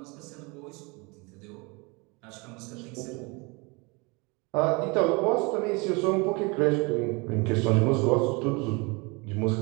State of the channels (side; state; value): left; quieter; 28.4 dB